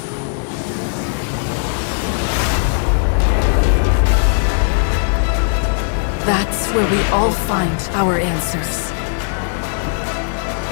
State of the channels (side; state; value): right; silent; digital silence